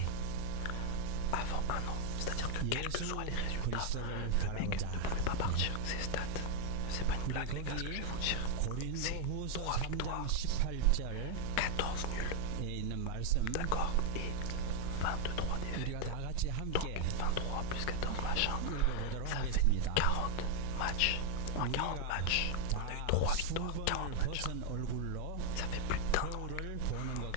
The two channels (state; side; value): different; both; correlation 0.00